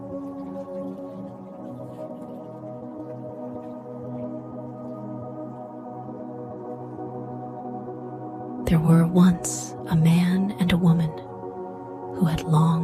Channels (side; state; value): both; identical; correlation 1.00